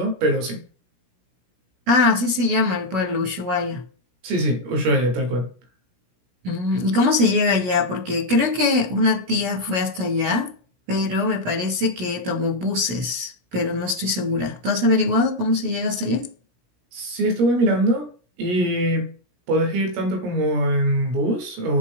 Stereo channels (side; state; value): left; late; 17 ms